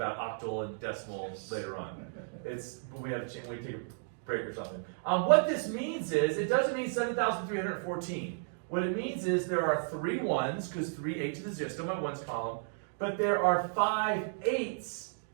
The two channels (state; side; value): silent; left; digital silence